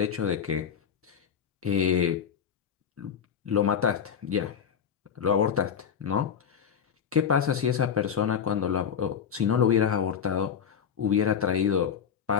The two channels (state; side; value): quieter; right; 7.6 dB